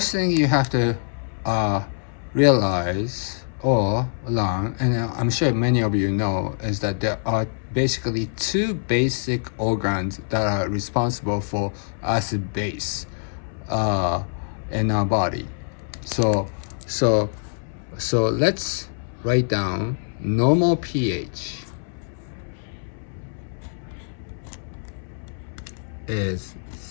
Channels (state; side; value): silent; right; 62 dB below the other